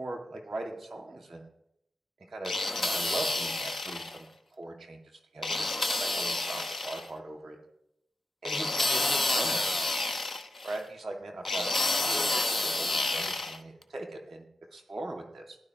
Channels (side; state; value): both; normal; correlation 0.89